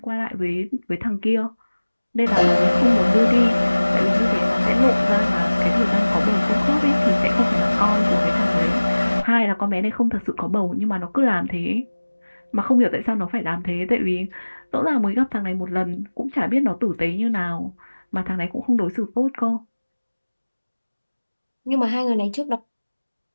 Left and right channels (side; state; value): both; inverted; correlation -1.00